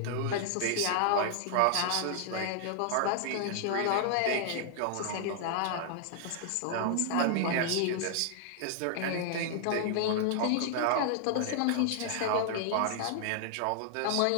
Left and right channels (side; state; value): both; different; correlation 0.00